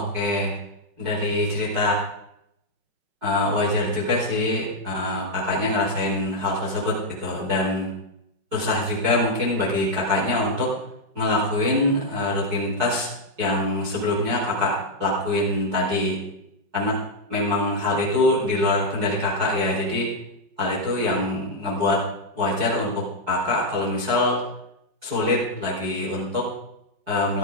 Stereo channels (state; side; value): late; left; 4.6 ms